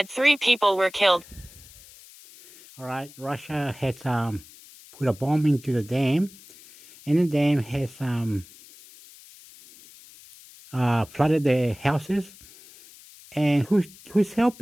3 people were killed. Alright, Russia has put a bomb into the dam, and the dam has flooded the houses. And who's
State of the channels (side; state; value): left; noise; hiss, 22 dB below the sound